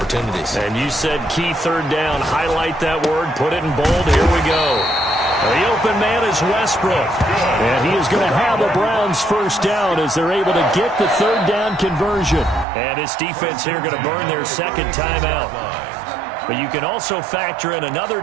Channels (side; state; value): left; drops out; at 12.7 s